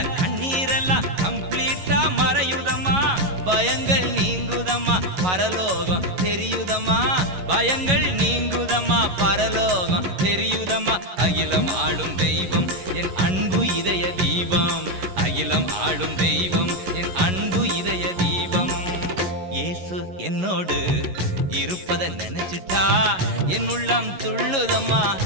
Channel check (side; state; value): left; late; 11 ms